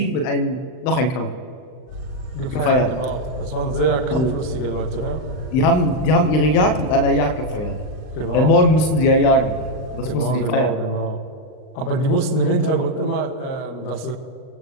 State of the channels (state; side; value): late; right; 39 ms